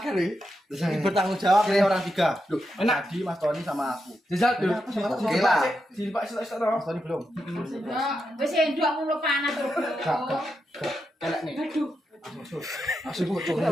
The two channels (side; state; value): both; normal; correlation 0.85